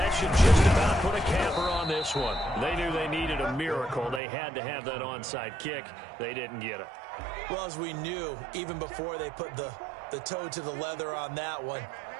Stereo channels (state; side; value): drops out; left; at 4.2 s